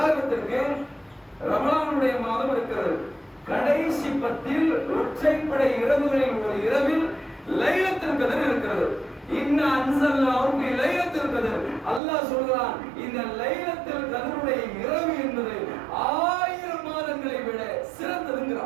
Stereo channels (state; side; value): drops out; left; at 12.0 s